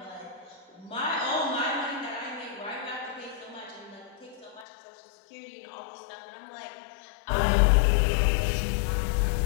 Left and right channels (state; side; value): drops out; right; at 4.7 s